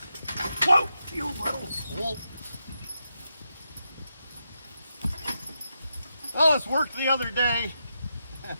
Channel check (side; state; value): both; inverted; correlation -0.86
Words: Whoa! You little swoop. Well, it's worked the other day.